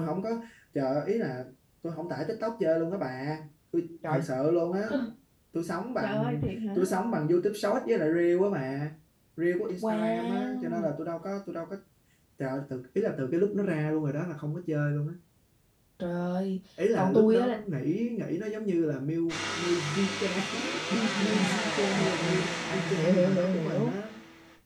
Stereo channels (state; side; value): identical; both; correlation 1.00